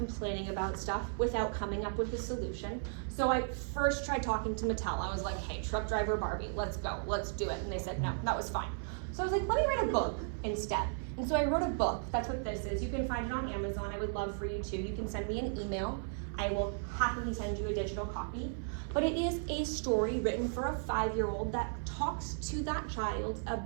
about stuff without coming up with a solution. So I first tried talking to Mattel. I was like, hey, truck driver Barbie, let's go, let's do it. And they said, no, that was fine. So I was like, let me write a book instead. And so I wrote a book. That's what this is. You can find it on Amazon. I would love for you to. You can send me an email. I will happily send you a digital copy. But it is a story written for a 5-year-old that talks to that child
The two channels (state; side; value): silent; left; 54 dB below the other